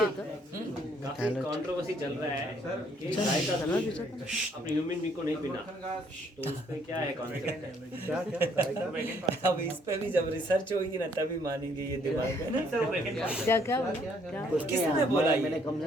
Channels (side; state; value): both; normal; correlation 0.66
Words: काफी कंट्रोवर्सी चल रहा है कि गाय का दूध अपने ह्यूमन बींग को नहीं पीना, तो उस पे क्या है कॉन्सेप्ट? अब इस पे भी जब रिसर्च होगी ना तभी मानेंगे ये दिमाग में। किसने बोला? मैंने कम से